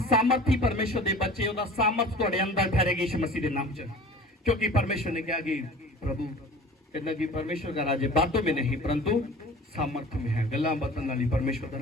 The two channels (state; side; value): normal; both; correlation 0.42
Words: परमेश्वर के बच्चे हो सामर्थ थोड़े अंदर ठहरेगी यीशु मसीह के नाम च, क्योंकि परमेश्वर ने कहा कि प्रभु कहना कि परमेश्वर का राज्य बातों में नहीं परंतु सामर्थ्य में है। गल्लां बातां नाल ही परमेश्वर का